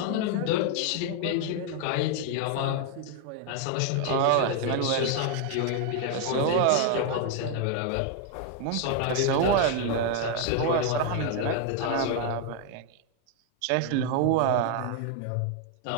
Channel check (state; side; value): different; both; correlation 0.01